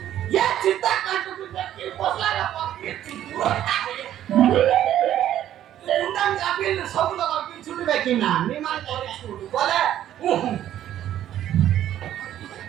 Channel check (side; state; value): left; quieter; 11.7 dB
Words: ये चिंता काटू की पोसला का पक्के उंडम जापिल सब लोग की छुट बेकी ना निमान करे छुट बोले